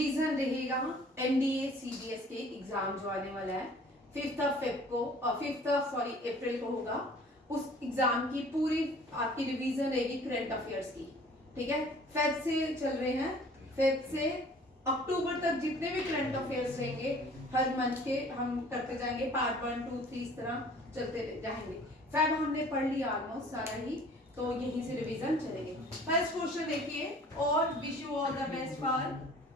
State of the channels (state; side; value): normal; both; correlation 0.51